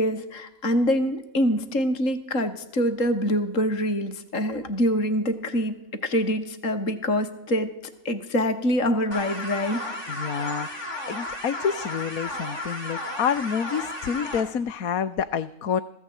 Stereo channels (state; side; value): late; right; 3.7 ms